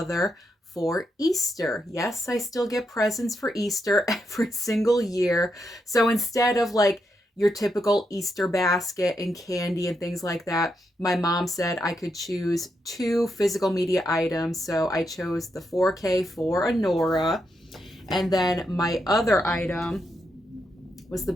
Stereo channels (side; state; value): both; normal; correlation 0.82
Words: for Easter. Yes, I still get presents for Easter every single year. So instead of like your typical Easter basket and candy and things like that, my mom said I could choose two physical media items. So I chose the 4K for Anora. And then my other item was the